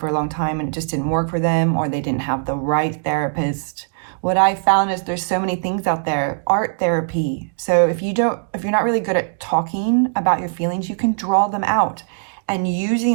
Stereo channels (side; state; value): left; silent; digital silence